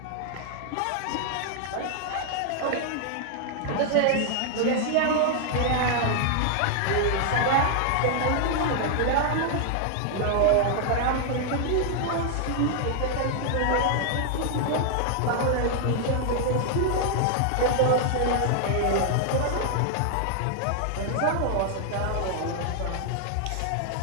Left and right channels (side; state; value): both; different; correlation 0.00